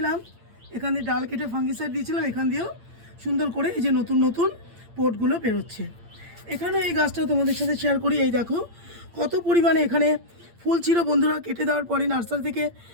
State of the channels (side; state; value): left; late; 8.7 ms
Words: এখান দিয়ে ডাল কেটে ফাঙ্গিসাইড দিয়েছিলাম। এখান দিয়েও সুন্দর করে এই যে নতুন নতুন পোটগুলো বেরোচ্ছে। এখানে এই গাছটা তোমাদের সাথে শেয়ার করি। এই দেখো কত পরিমাণে এখানে ফুল ছিল বন্ধুরা। কেটে দেওয়ার পরে নার্সারি থেকে